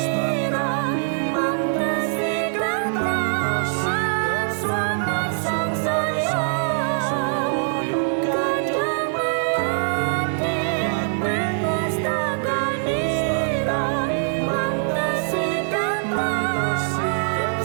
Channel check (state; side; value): silent; left; 58 dB below the other